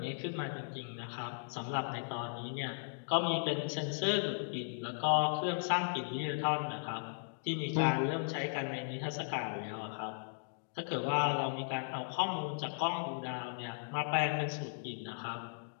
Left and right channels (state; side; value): silent; right; digital silence